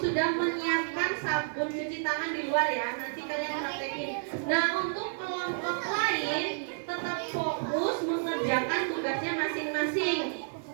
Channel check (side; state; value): left; silent; digital silence